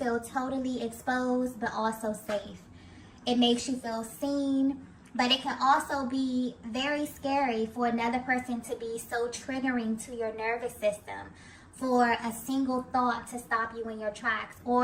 totally exposed, but also safe. It makes you feel seen, but it can also be very scary for another person to be so triggering to your nervous system, for a single thought to stop you in your tracks,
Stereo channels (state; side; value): identical; both; correlation 1.00